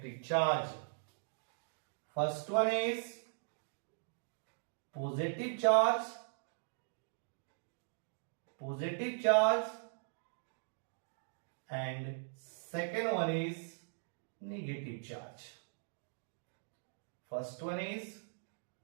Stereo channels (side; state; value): left; silent; digital silence